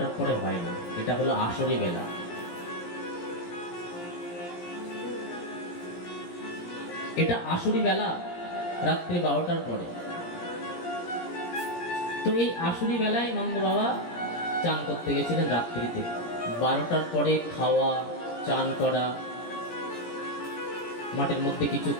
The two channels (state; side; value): late; right; 17 ms